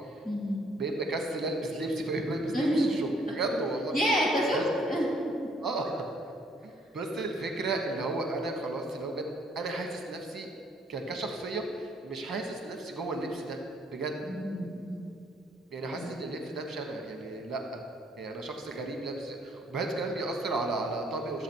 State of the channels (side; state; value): both; normal; correlation 0.64